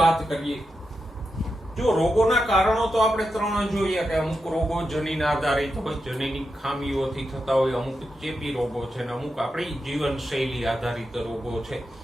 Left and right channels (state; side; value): normal; both; correlation 0.87